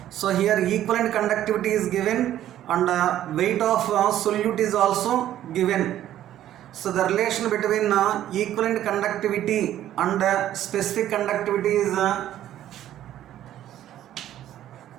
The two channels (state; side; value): quieter; left; 12.2 dB